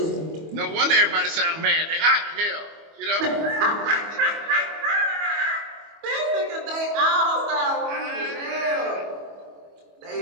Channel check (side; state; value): left; late; 25 ms